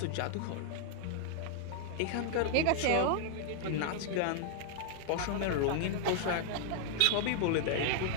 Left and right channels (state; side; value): different; both; correlation -0.01